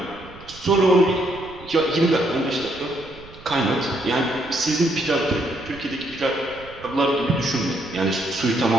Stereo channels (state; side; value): noise; right; rumble, 20 dB below the sound